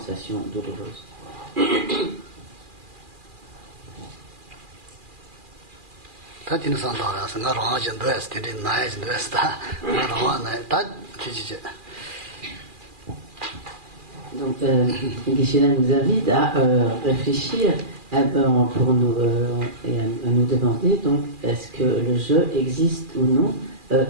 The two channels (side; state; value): left; late; 2.4 ms